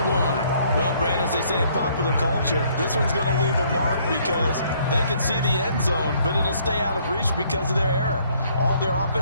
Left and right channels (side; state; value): both; inverted; correlation -0.64